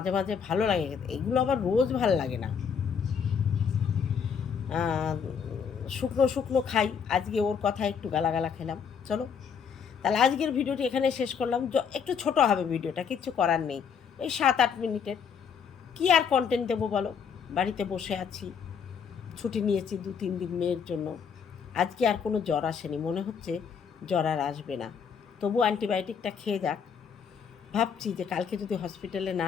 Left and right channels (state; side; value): quieter; right; 6.8 dB